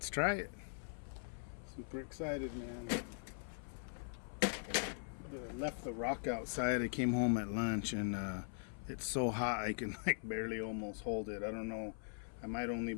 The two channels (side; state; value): right; silent; 50 dB below the other